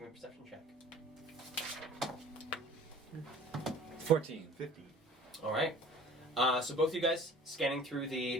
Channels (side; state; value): both; normal; correlation 0.47